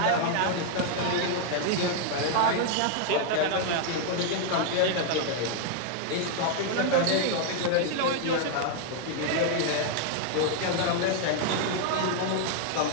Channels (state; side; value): different; both; correlation 0.00